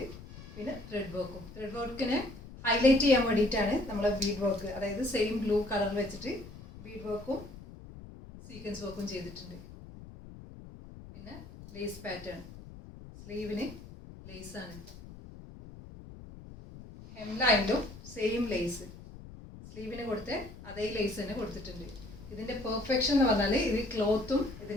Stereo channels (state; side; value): noise; left; rumble, 16 dB below the sound